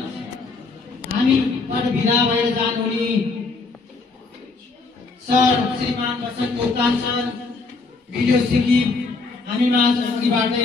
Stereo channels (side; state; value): right; quieter; 3.9 dB